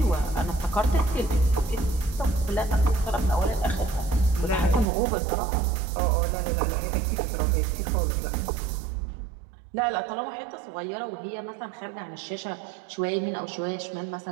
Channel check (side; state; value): left; drops out; at 4.9 s